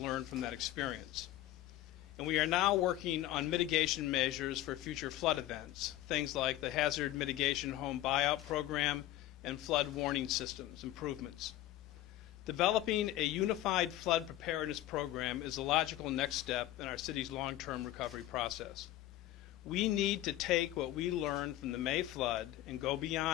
from that experience. And we are now working on mitigation measures for future flood events, things like the Hazard Mitigation Home Buyout Program and flood warning systems improvements. Developing a unified flood preparedness program is a logical next step in our city's long-term recovery process. We need to take what we learned from the May flood and go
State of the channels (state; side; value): quieter; right; 14.7 dB